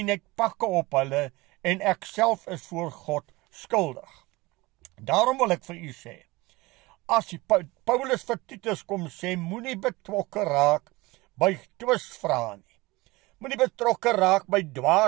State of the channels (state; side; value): quieter; left; 21.9 dB